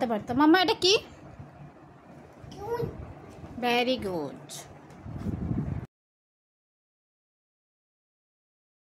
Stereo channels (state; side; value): identical; both; correlation 1.00